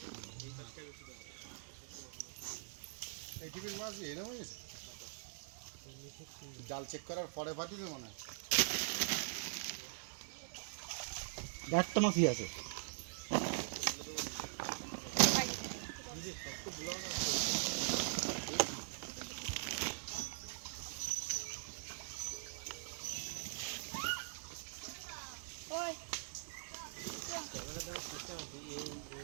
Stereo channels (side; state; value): left; silent; digital silence